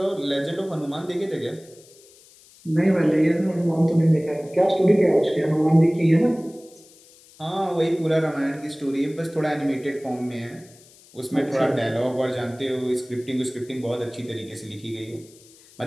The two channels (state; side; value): noise; left; hiss, 25 dB below the sound